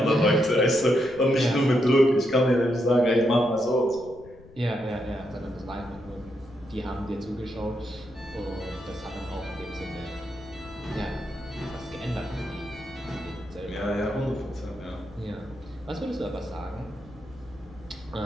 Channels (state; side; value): noise; left; rumble, 21 dB below the sound